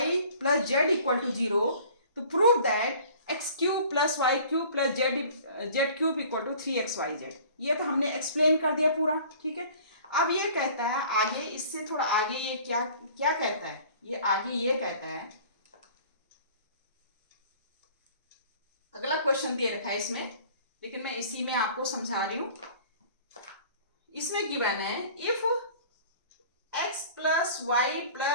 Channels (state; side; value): inverted; both; correlation -0.48